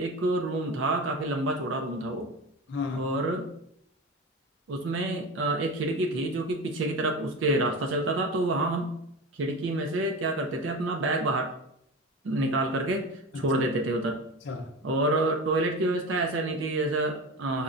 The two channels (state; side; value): normal; both; correlation 0.27